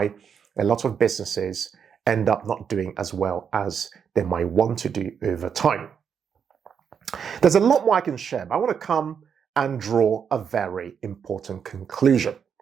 a lot of businesses end up not doing as well as they might want to do over time. There's a lot more I can share, but I want to come and draw a very important conclusion.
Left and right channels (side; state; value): left; quieter; 7.2 dB